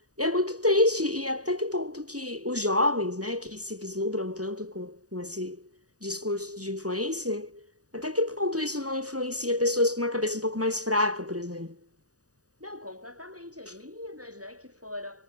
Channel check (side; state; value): left; late; 0.67 ms